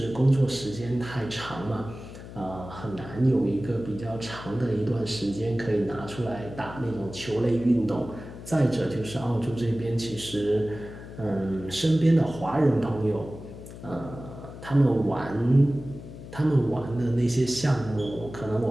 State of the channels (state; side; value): noise; left; hum, 13 dB below the sound